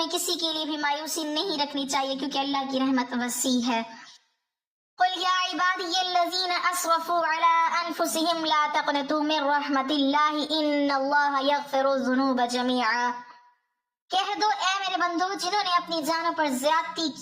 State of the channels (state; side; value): identical; both; correlation 1.00